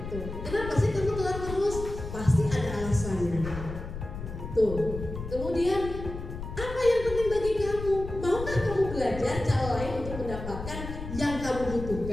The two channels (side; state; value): left; noise; rumble, 8 dB below the sound